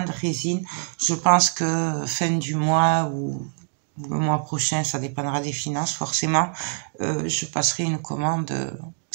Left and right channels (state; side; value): silent; left; 62 dB below the other